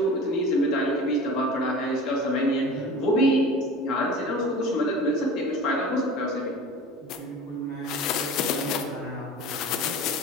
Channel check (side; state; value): both; normal; correlation 0.38